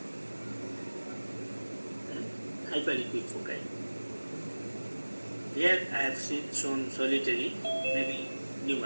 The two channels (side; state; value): both; inverted; correlation -1.00